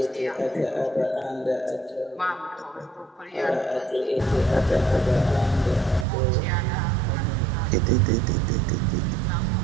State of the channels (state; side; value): drops out; left; at 6.1 s